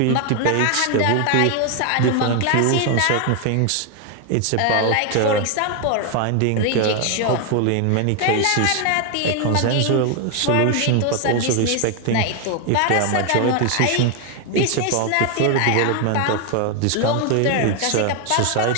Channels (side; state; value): both; different; correlation 0.01